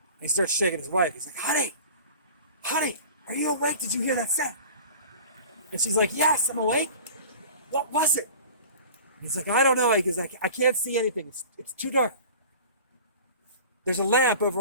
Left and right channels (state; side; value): inverted; both; correlation -0.40